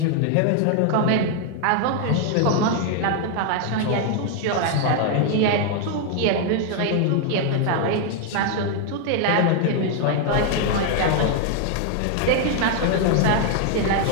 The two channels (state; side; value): different; both; correlation 0.00